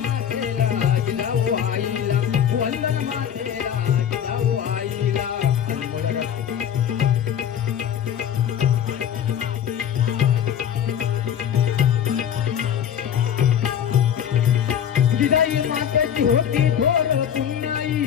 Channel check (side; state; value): right; quieter; 9.2 dB